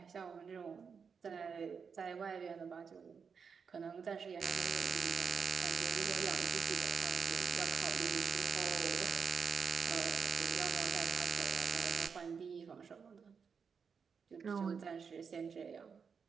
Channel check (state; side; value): quieter; left; 6.1 dB